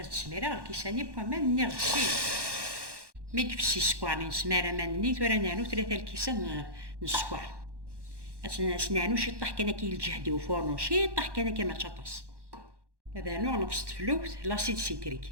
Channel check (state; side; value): late; left; 1.1 ms